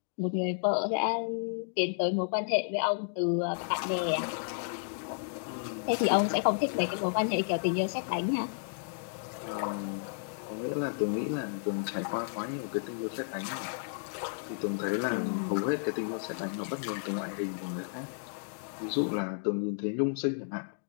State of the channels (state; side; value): silent; right; digital silence